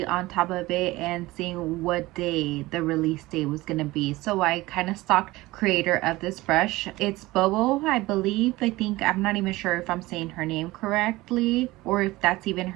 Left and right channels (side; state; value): left; quieter; 19.4 dB